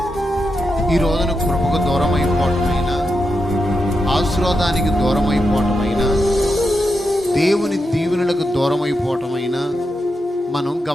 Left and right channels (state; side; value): normal; both; correlation 0.86